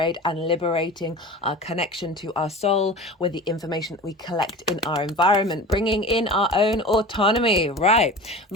and liberating our connection to our soul with the information that we collect in our environment, bringing in our own autonomy. Right.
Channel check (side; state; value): both; normal; correlation 0.35